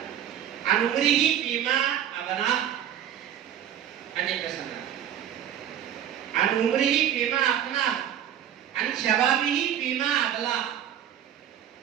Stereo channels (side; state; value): left; quieter; 10.2 dB